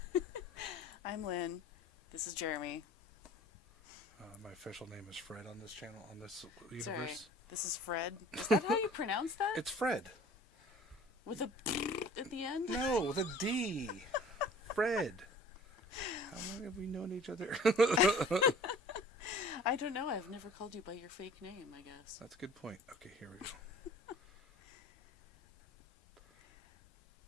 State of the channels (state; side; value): normal; both; correlation 0.47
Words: I'm Lynn. This is Jeremy. My official name is Fred on this channel, on this universe. Sorry, this is Fred. Is that how you pronounce that? It's Fred. With a at the end? No, with a D. Fred. How long have we known each other? I don't know. I've never called you by your fake name, I guess. That's a good point. Okay, here we go.